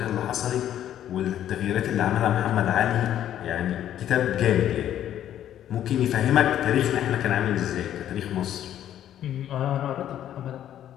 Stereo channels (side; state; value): right; quieter; 11.1 dB